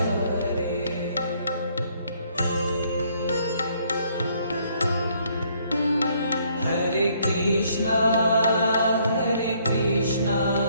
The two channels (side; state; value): both; inverted; correlation -0.66